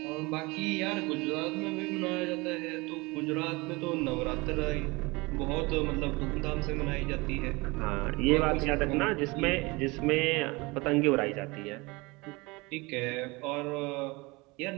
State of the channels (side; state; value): left; quieter; 24.7 dB